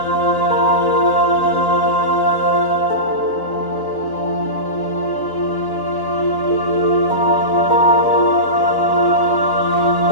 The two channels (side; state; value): right; late; 3.9 ms